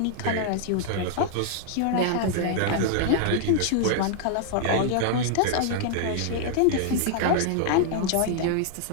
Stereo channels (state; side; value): different; both; correlation 0.00